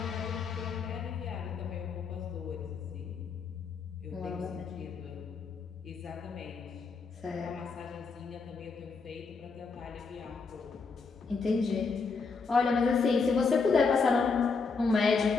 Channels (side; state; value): right; quieter; 4.8 dB